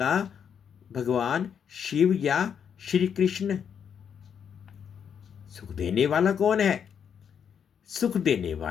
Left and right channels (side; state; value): right; quieter; 7.7 dB